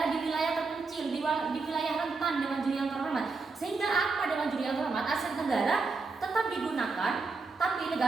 di wilayah terpencil, di wilayah rentan. Dewan Juri yang terhormat, Sehingga apa Dewan Juri yang terhormat, aset negara tetap digunakan, tapi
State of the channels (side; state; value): left; quieter; 4.1 dB